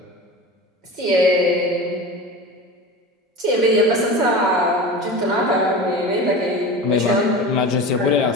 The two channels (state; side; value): normal; both; correlation 0.31